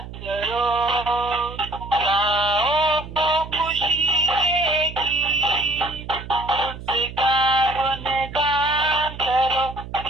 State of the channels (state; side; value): noise; right; hum, 12 dB below the sound